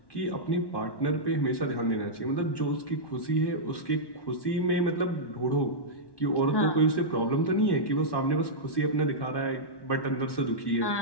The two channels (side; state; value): right; late; 1.1 ms